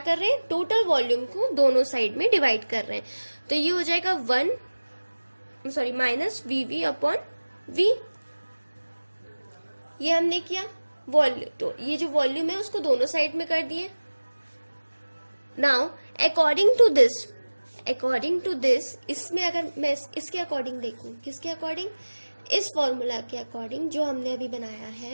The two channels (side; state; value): both; inverted; correlation -1.00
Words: रहे हैं, टोटल वॉल्यूम को दोनों साइड में डिवाइड कर रहे हैं, तो ये हो जाएगा माइनस VV अपॉन V। ये हमने किया वॉल्यूम, तो ये जो वॉल्यूम है उसको दोनों साइड में कर दिए। नाउ अकॉर्डिंग टू दिस इसमें अगर मैं इसके अकॉर्डिंग देखूं, किसके अकॉर्डिंग, इस फॉर्मूला के अकॉर्डिंग जो हमने अभी बनाया